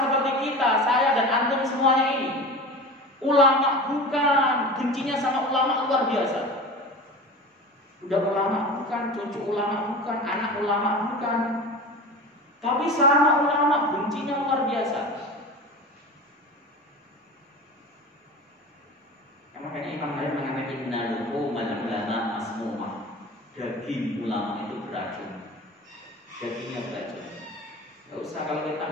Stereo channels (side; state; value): both; normal; correlation 0.33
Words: kita, saya dan antum semuanya ini? Ulama bukan, bencinya sama ulama luar biasa. Udah ulama bukan, cucu ulama bukan, anak ulama bukan. Tapi sama ulama bencinya luar biasa. Makanya Imam Nawawi mengatakan innal ulama masmumah. Daging ulama itu beracun. Dagingnya beracun. Gak usah kalau kita